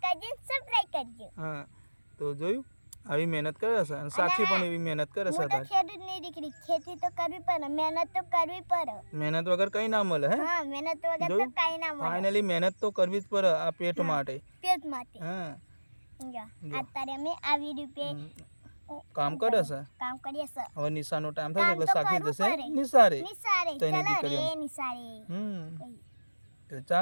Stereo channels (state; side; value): inverted; both; correlation -1.00